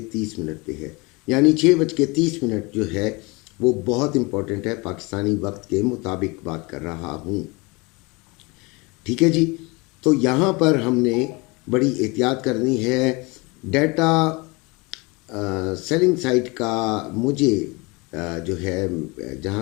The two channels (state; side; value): quieter; right; 26.6 dB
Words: पे है। यानी 6:30 जो है वो बहुत इम्पोर्टेंट है। पाकिस्तानी वक्त के मुताबिक बात कर रहा हूँ, ठीक है जी। तो यहाँ पर हमने बड़ी एहतियात करनी है। डाटा सेलिंग साइट का मुझे जो है,